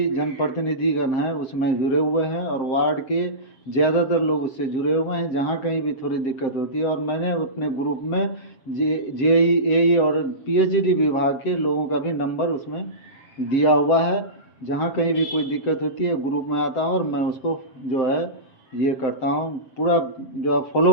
जनप्रतिनिधिगण हैं उसमें जुड़े हुए हैं और वार्ड के ज़्यादातर लोग उससे जुड़े हुए हैं। जहाँ कहीं भी थोड़ी दिक्कत होती है, और मैंने अपने ग्रुप में जेई, एई और पीएचडी विभाग के लोगों का भी नंबर उसमें दिया हुआ है। जहाँ कहीं भी कोई दिक्कत होती है ग्रुप में आता हूँ और मैं उसको जो है ये करता हूँ, पूरा जो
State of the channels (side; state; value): right; late; 7.3 ms